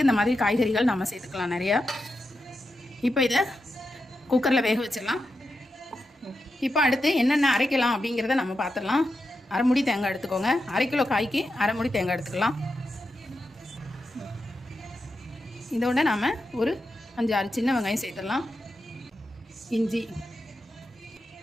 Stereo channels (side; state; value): both; normal; correlation 0.88